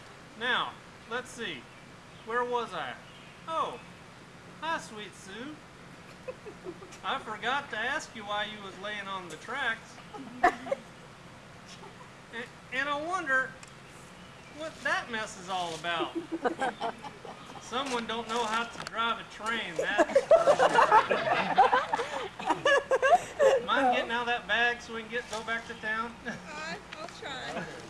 Now, let's see. Where was I? Oh, hi, Sweet Sue. I forgot to ask you why you was laying on the tracks. And I wonder what that mess is all about. Someone don't know how to drive a train, that's for sure. Mind getting out of that bag so we can go back to town? I'll try.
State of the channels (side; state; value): both; identical; correlation 1.00